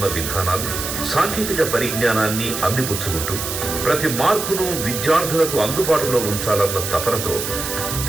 విధానాలు, సాంకేతిక పరిజ్ఞానాన్ని అందిపుచ్చుకుంటూ ప్రతి మార్పును విద్యార్థులకు అందుబాటులో ఉంచాలన్న తపనతో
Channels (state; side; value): noise; right; hiss, 4 dB below the sound